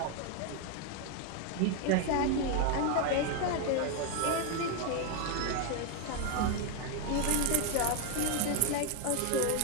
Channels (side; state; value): both; different; correlation 0.01